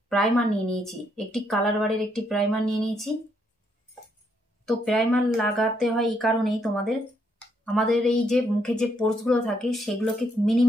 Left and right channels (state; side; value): normal; both; correlation 0.74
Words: প্রাইমার নিয়ে নিয়েছি, একটি কালার বারের একটি প্রাইমার নিয়ে নিয়েছি। তো প্রাইমার লাগাতে হয় এই কারণেই, আমাদের এই যে মুখে যে পোর্সগুলো থাকে সেগুলোকে